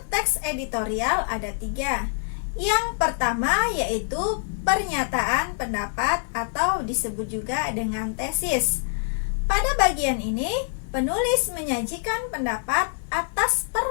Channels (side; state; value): right; silent; digital silence